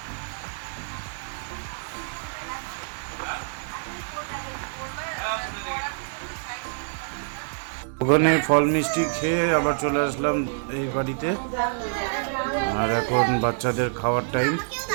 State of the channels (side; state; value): left; silent; digital silence